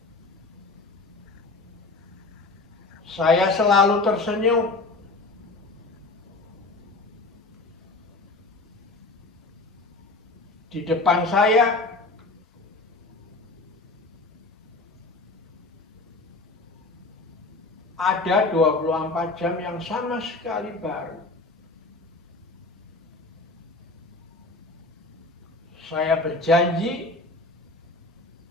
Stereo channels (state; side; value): quieter; right; 3.3 dB